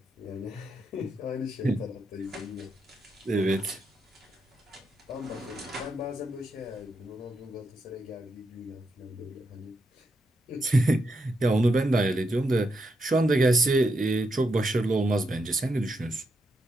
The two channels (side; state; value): both; normal; correlation 0.82